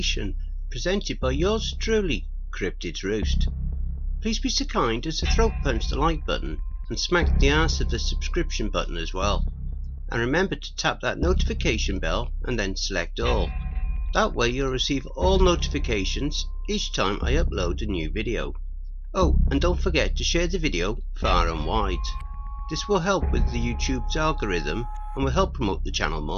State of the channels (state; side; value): identical; both; correlation 1.00